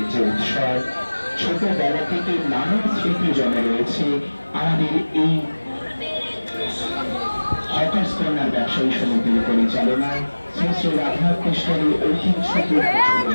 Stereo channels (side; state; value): both; inverted; correlation -1.00